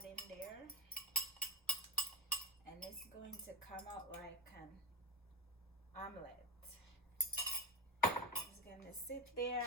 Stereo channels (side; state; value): both; normal; correlation 0.18